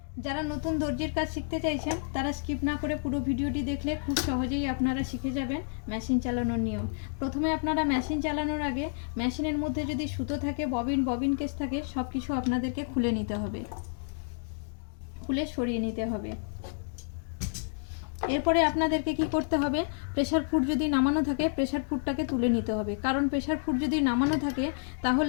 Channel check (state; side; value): silent; right; digital silence